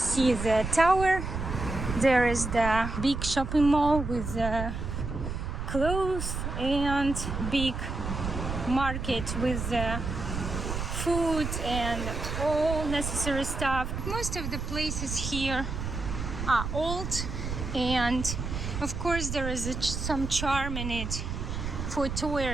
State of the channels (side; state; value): right; noise; rumble, 4 dB below the sound